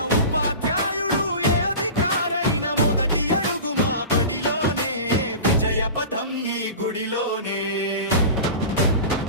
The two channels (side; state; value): both; inverted; correlation -0.33